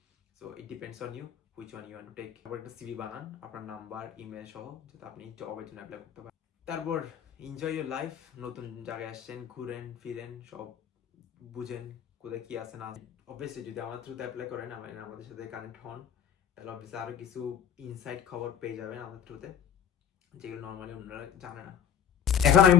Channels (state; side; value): quieter; right; 8.6 dB